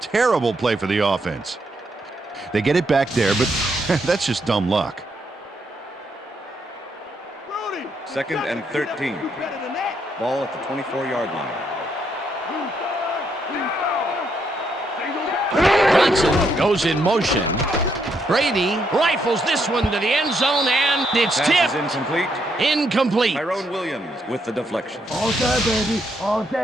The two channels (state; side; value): normal; both; correlation 0.76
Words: terrible play for the offense. They get it back there, but that's just dumb luck. Second and 13. Ball at the 24-yard line. Johnson goes in motion. Brady rifles this one to the end zone, and it's tipped. Incomplete. Incomplete. Tyrone Williams with the deflection. All day, baby. All